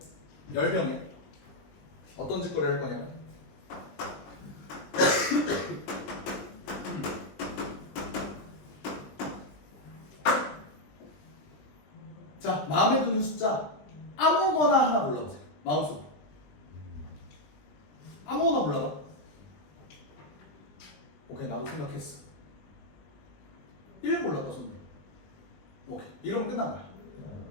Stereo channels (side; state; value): right; late; 20 ms